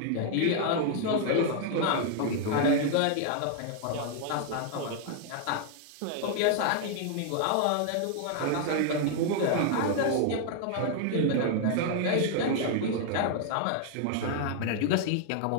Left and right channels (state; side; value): different; both; correlation 0.00